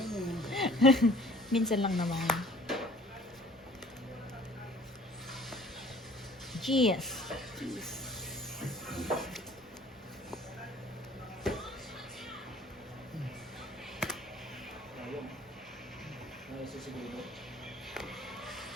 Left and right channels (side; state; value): both; normal; correlation 0.52